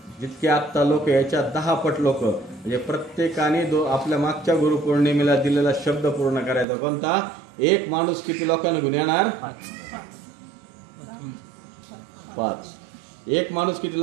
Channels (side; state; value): left; drops out; at 6.7 s